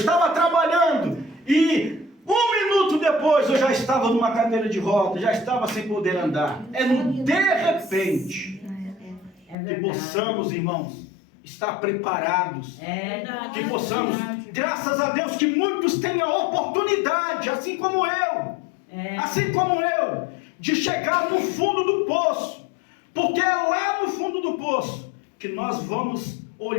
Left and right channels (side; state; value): right; drops out; at 9.6 s